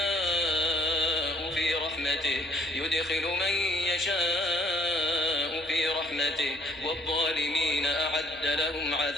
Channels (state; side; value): noise; left; hum, 27 dB below the sound